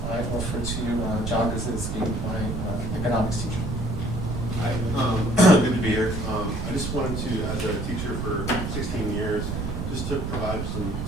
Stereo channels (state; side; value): noise; right; rumble, 3 dB below the sound